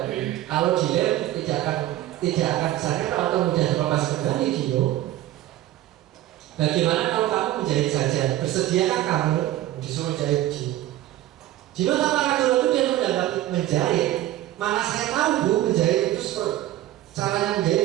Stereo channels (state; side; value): quieter; left; 14.2 dB